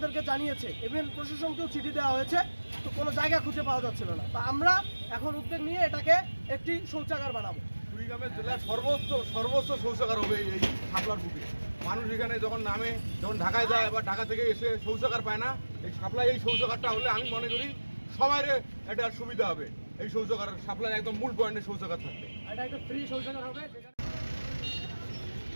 জানিয়েছে, ইভেন প্রশাসনকেও চিঠি দেওয়া হয়েছে, তো কোনো জায়গা খুঁজে পাওয়া যাচ্ছিল না। তো আমরা এখন উদ্যোগ নিয়ে এটাকে একটি শৌচাগার বানাবো। কুড়িগ্রামের জেলার সর্বোচ্চ শৌচাগার হবে এই শাপলার বুকে। মানুষ এখানে যখন নামে, যখন ঢাকায় যায় বা ঢাকা থেকে এসে শৌচাগার পায় না, এই শাপলায় এই শৌচাগারটা হলে আমি মনে করি সবাই এটা সুবিধা হবে। এই শৌচাগার শাপলার একদম মূল পয়েন্টে শৌচাগার থাকবে। এটা একটা ফ্রি শৌচাগার হবে।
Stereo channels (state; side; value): inverted; both; correlation -1.00